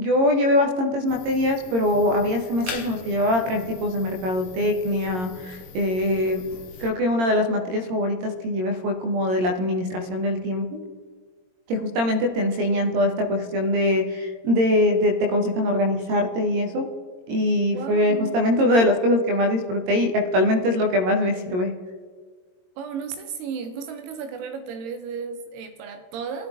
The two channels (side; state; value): left; late; 22 ms